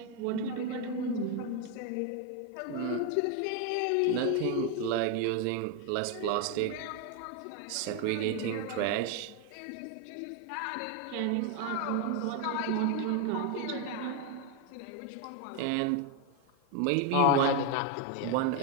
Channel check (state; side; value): different; both; correlation 0.01